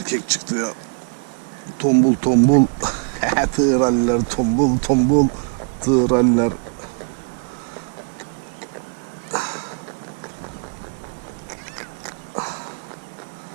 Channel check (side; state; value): left; quieter; 38.2 dB